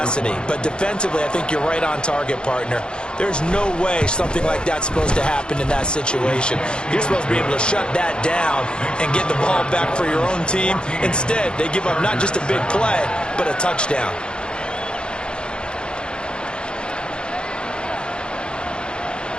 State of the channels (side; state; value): right; late; 0.051 ms